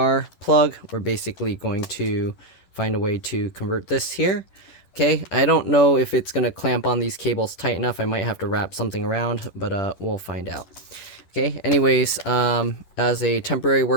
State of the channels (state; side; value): late; right; 11 ms